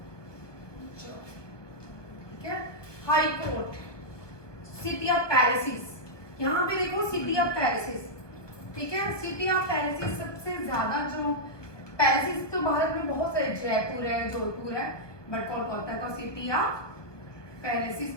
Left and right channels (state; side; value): late; right; 1.1 ms